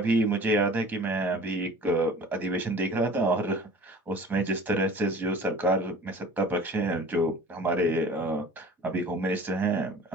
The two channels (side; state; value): both; normal; correlation 0.43